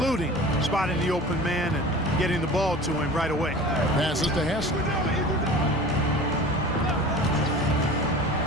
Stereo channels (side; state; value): both; normal; correlation 0.39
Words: spotting the open man and getting the ball to him right away. Passes to Hassel.